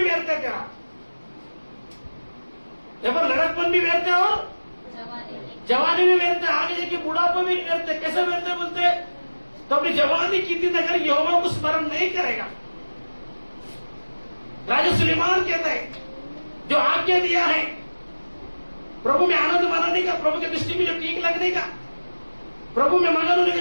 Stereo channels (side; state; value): both; inverted; correlation -1.00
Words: व्यर्थ है तेरा। यहाँ पर लड़कपन भी व्यर्थ है और जवानी भी व्यर्थ है, आगे जाके बुढ़ापा भी व्यर्थ है। कैसे व्यर्थ है बोलते हैं? तो अपनी जवानी की दिन अगर यहोवा को स्मरण नहीं करेगा, राजा सुलेमान कहता है जो आज्ञा दिया है प्रभु में आनंद मानने का, प्रभु की दृष्टि में जो ठीक लगने का, प्रभु में मगन होने का